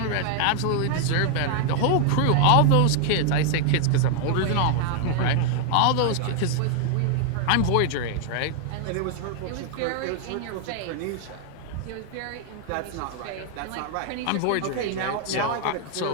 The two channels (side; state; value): both; different; correlation 0.00